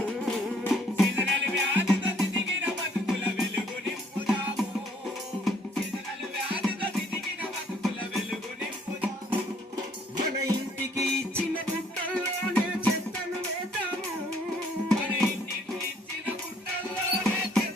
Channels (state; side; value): normal; both; correlation 0.63